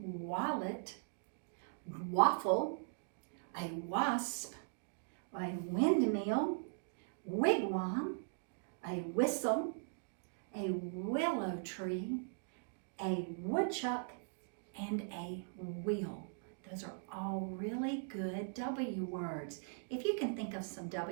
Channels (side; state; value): left; silent; digital silence